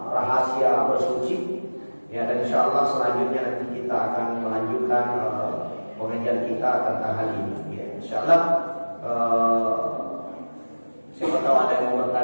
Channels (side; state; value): both; inverted; correlation -1.00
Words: rahasia bersuci. Ya, dan insya Allah selanjutnya nanti kita akan melanjutkan pengajian kita tentang hal ini. Ya, insya Allah siapa tahu ada yang mau